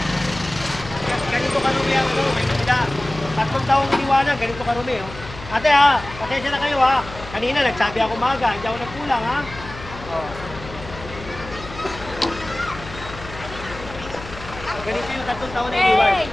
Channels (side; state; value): left; noise; hum, 14 dB below the sound